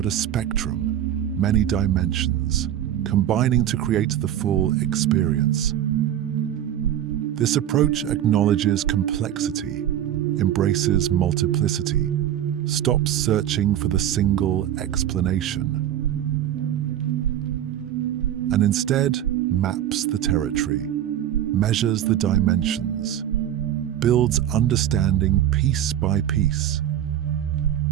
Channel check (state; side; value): quieter; left; 11.2 dB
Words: a spectrum, many dimensions, combining to create the full experience. This approach acknowledges complexity, embraces multiplicity, stops searching for the single explanation, and instead maps the territory, measures the dimensions, builds understanding piece by piece.